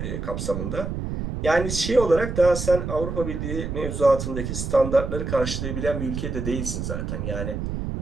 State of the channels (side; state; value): right; noise; rumble, 4 dB below the sound